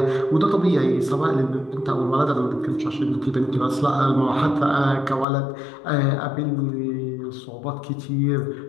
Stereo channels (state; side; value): drops out; right; at 5.2 s